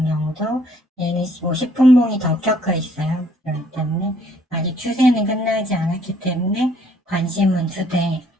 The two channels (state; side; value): normal; both; correlation 0.63